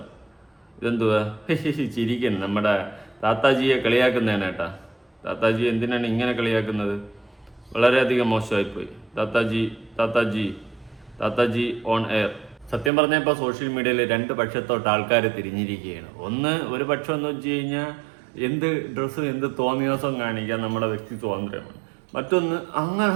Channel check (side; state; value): left; drops out; at 12.9 s